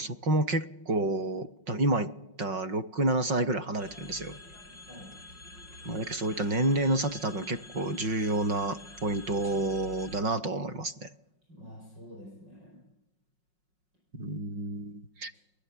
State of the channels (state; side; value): late; left; 5.5 ms